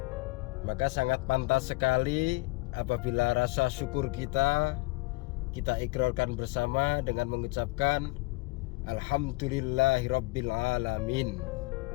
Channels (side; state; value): right; quieter; 23.0 dB